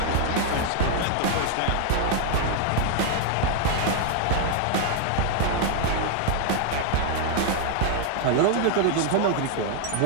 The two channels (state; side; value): different; both; correlation 0.00